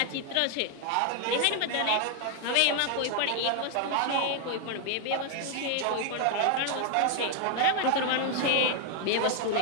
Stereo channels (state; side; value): different; both; correlation 0.00